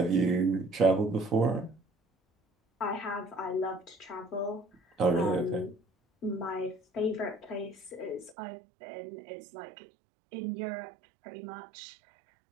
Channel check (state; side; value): drops out; left; at 8.3 s